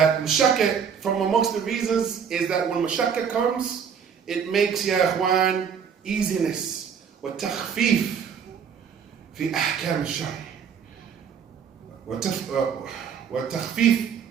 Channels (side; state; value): left; quieter; 7.2 dB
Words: mashakka, from amongst the reasons, is that when mashakka comes, it makes, ya ikhwan, easiness. Wa takhfif fi ahkam al-shari. وَتَخْفِيف